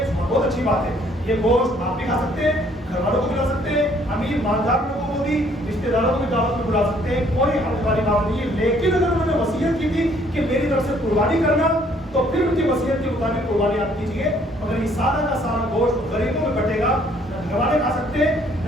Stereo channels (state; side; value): normal; both; correlation 0.63